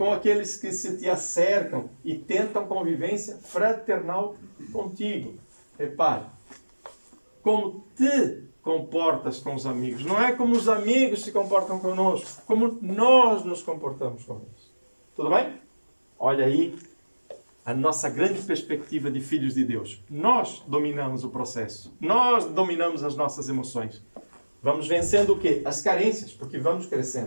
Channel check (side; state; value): both; inverted; correlation -1.00